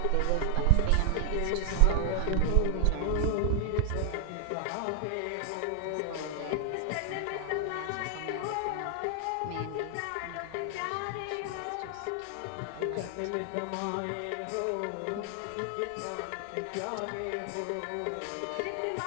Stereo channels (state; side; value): different; both; correlation 0.00